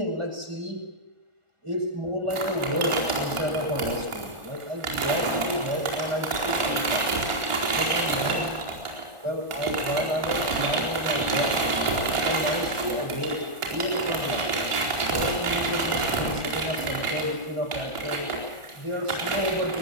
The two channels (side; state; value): left; late; 1.4 ms